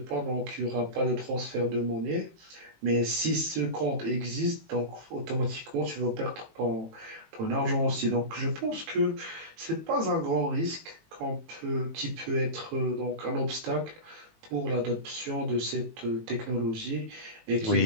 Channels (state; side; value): late; left; 18 ms